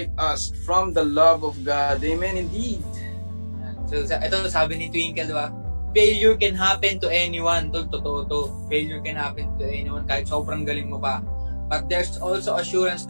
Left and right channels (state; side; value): inverted; both; correlation -1.00